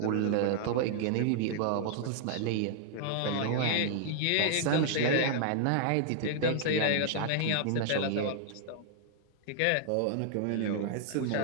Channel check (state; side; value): different; both; correlation -0.01